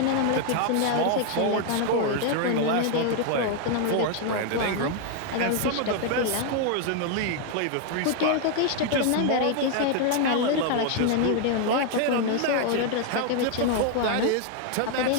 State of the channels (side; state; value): both; different; correlation 0.00